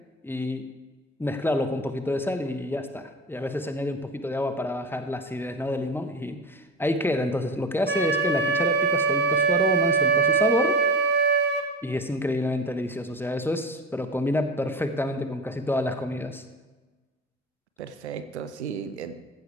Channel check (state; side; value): normal; both; correlation 0.29